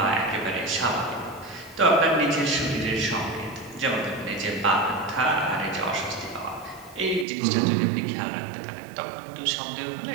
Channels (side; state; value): left; drops out; at 7.2 s